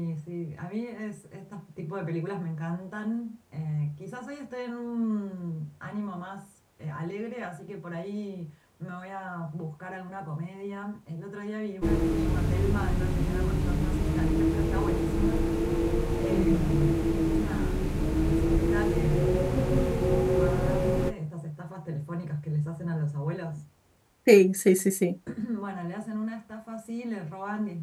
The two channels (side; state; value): both; identical; correlation 1.00